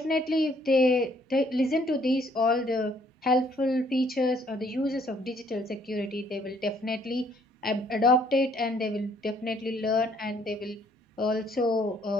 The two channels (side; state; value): both; normal; correlation 0.64